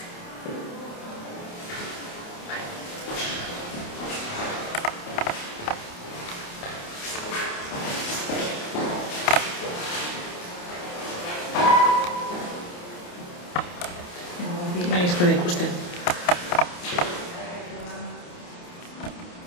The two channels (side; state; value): right; late; 28 ms